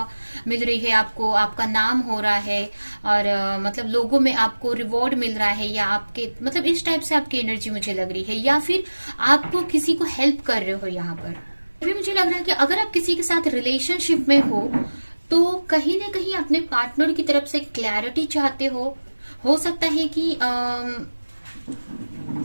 मिल रही है आपको, आपका नाम हो रहा है और मतलब लोगों में आपको रिवॉर्ड मिल रहा है, या आपके मतलब इस टाइप से आपकी एनर्जी मुझे लग रही है, या फिर आपको किसी को हेल्प कर रहे हो। यहाँ पर भी मुझे लग रहा है कि अगर आप किसी के साथ रिलेशनशिप में हो तो कहीं ना कहीं अपने पार्टनर की तरफ से क्लैरिटी चाहते हो सकता है कि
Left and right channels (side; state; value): both; inverted; correlation -1.00